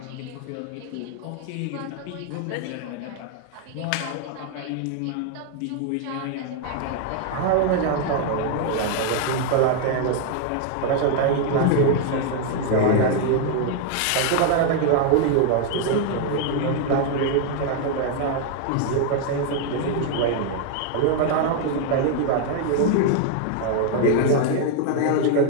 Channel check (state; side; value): different; both; correlation 0.00